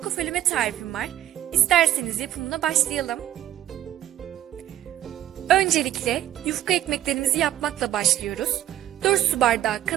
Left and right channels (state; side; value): quieter; left; 12.6 dB